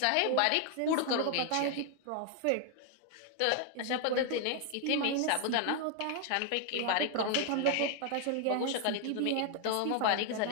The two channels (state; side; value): different; both; correlation 0.00